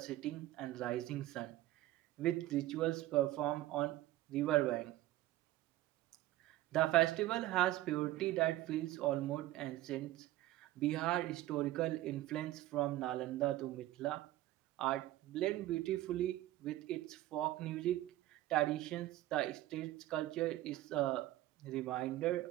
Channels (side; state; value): left; quieter; 15.6 dB